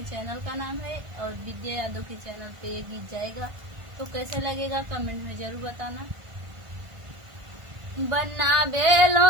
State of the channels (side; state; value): left; late; 1.4 ms